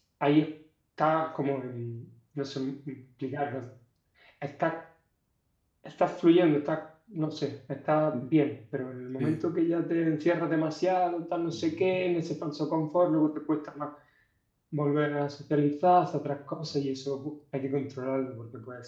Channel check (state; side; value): identical; both; correlation 1.00